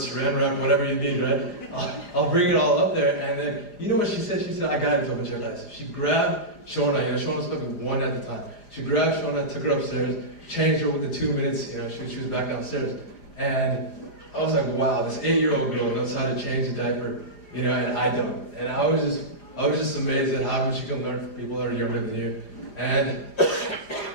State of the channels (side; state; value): right; late; 4.9 ms